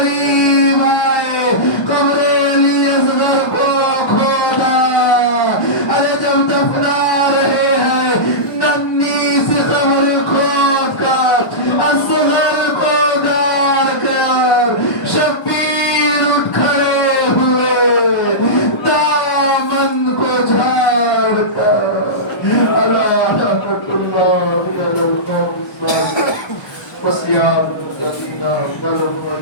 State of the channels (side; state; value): right; late; 1.1 ms